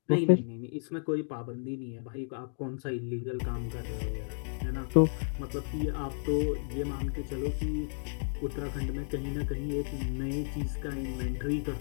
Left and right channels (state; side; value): silent; right; digital silence